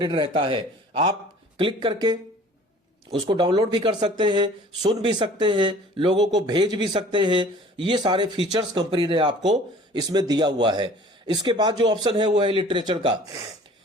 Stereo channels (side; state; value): both; normal; correlation 0.49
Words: रहता है। आप क्लिक करके उसको डाउनलोड भी कर सकते हैं, सुन भी सकते हैं, लोगों को भेज भी सकते हैं। ये सारे फीचर्स कंपनी ने आपको इसमें दिया हुआ है। इसके बाद जो ऑप्शन है वो है लिटरेचर का।